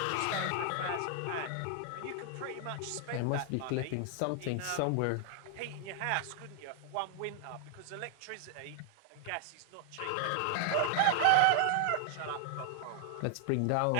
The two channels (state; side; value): different; both; correlation 0.00